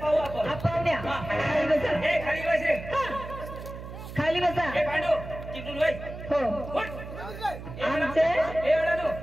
आपण पाहुण्या हा. खाली बसा. ए खाली बस रे खाली बसा. ए पांडू तिकडून वय हो उठ. आमचे ए अडाणू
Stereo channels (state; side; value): noise; right; hum, 11 dB below the sound